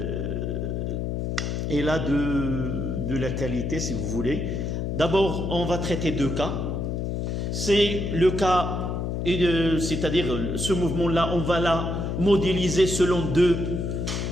est là de la qualité, si vous voulez. D'abord, on va traiter deux cas. C'est le cas, c'est-à-dire ce mouvement-là, on va la modéliser selon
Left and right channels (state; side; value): noise; left; hum, 2 dB below the sound